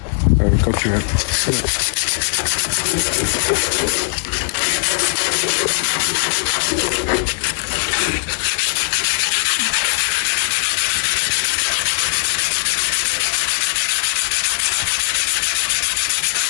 Quand tu veux.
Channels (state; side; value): silent; right; 57 dB below the other